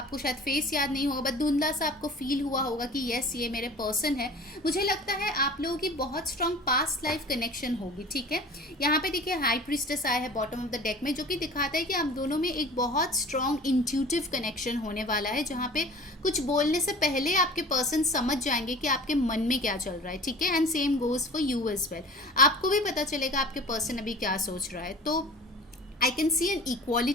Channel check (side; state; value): both; normal; correlation 0.42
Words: शायद फेस याद नहीं होगा, बट धुंधला सा आपको फील हुआ होगा कि यस ये मेरे पर्सन है. मुझे लगता है आप लोगों की बहुत स्ट्रॉन्ग पास्ट लाइफ कनेक्शन होगी. ठीक है, यहाँ पे देखिए हाई प्रीस्टेस आया है बॉटम ऑफ द डेक में, जो कि दिखाता है कि आप दोनों में एक बहुत स्ट्रॉन्ग इंट्यूटिव कनेक्शन होने वाला है, जहाँ पे कुछ बोलने से पहले आपके पर्सन समझ जाएंगे कि आपके मन में क्या चल रहा है. ठीक है, and same goes for you as well. आपको भी पता चलेगा आपके पर्सन अभी क्या सोच रहा है. तो I can see an